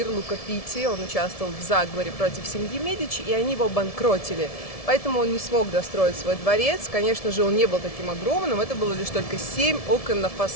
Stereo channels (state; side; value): late; right; 1.7 ms